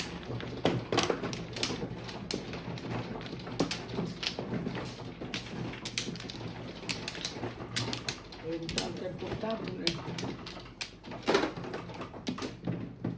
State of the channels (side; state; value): both; identical; correlation 1.00